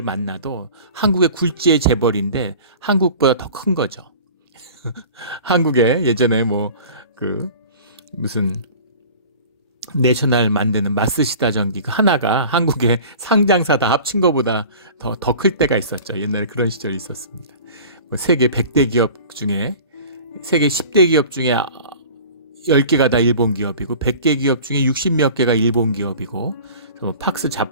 만나도 한국의 굴지의 재벌인데 한국보다 더 큰 거죠. 한국에 예전에 뭐 그 무슨 내셔널 만드는 마쓰시다 전기 그 하나가 한국의 상장사 다 합친 것보다 더 클 때가 있었죠. 옛날에 그런 시절이 있었습니다. 뭐 세계 100대 기업 중에 세계 10대 기업 중에 10개가 다 일본 기업이고 100개 기업 중에 60몇 개가 일본 기업이고 팍스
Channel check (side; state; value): both; inverted; correlation -0.42